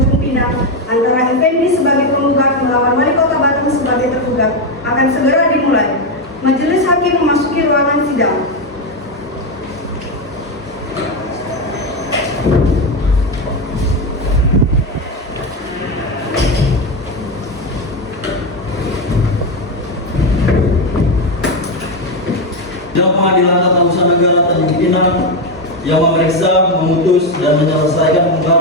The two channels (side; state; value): both; normal; correlation 0.09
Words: Pinang antara Effendi sebagai penggugat melawan Wali Kota Batam sebagai tergugat akan segera dimulai. Majelis Hakim memasuki ruangan sidang. Sidang Pengadilan Tata Usaha Negara Tanjung Pinang yang memeriksa, memutus, dan menyelesaikan